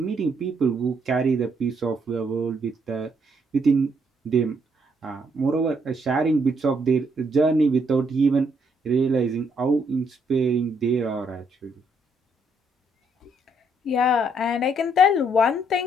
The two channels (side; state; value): both; normal; correlation 0.72